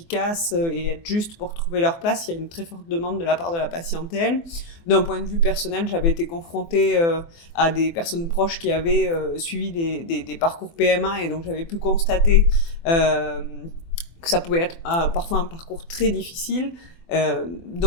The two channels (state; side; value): late; right; 24 ms